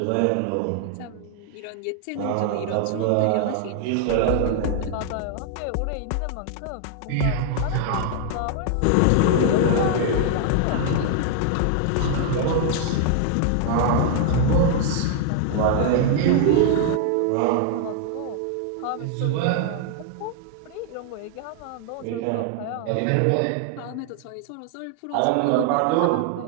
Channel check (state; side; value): different; both; correlation 0.00